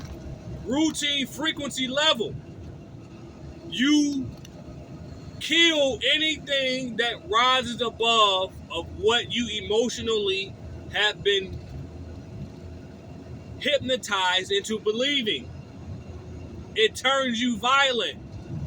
routine frequency level, you kill anything that rises above of what you emotionally have been hypnotized into believing. It turns you violent.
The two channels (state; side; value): identical; both; correlation 1.00